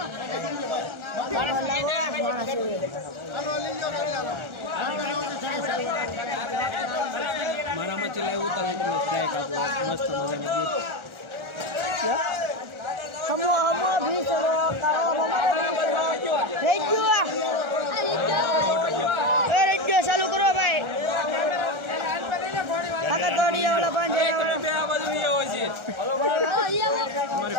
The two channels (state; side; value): late; left; 1.4 ms